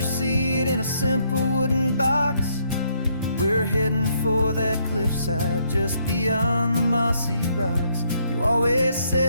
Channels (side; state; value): both; inverted; correlation -0.71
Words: seat in a simple wooden box. We're heading for that cliffside just beyond the mossy rocks. You always